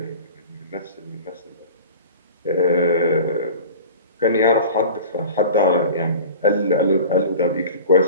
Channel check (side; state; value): both; inverted; correlation -0.38